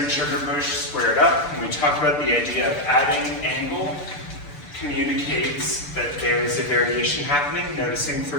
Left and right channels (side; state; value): right; late; 6.8 ms